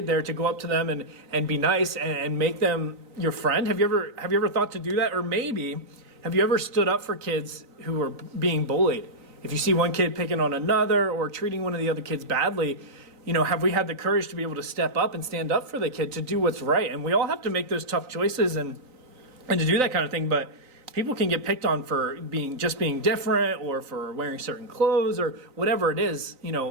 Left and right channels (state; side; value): late; left; 3.9 ms